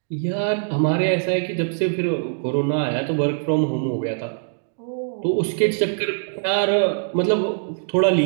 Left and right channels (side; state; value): left; silent; digital silence